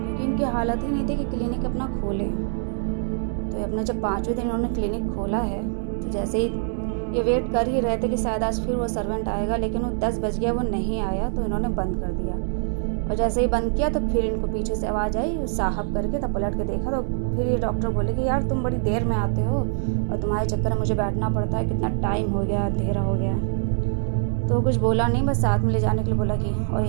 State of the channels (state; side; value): silent; left; digital silence